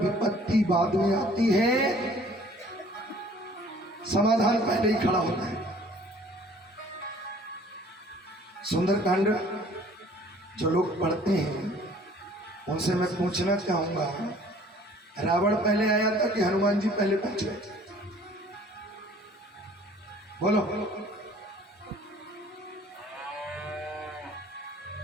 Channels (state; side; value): normal; both; correlation 0.54